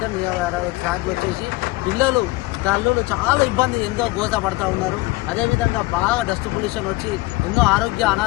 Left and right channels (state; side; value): quieter; right; 21.3 dB